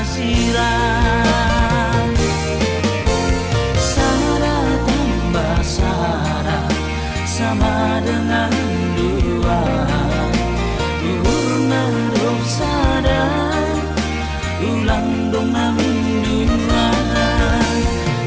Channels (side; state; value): both; identical; correlation 1.00